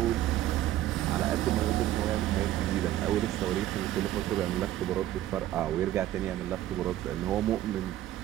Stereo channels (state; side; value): quieter; left; 13.6 dB